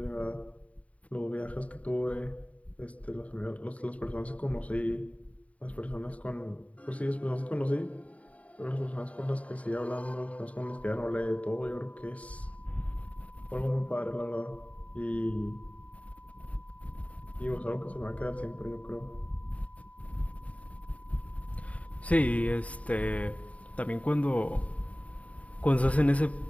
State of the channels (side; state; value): right; late; 0.067 ms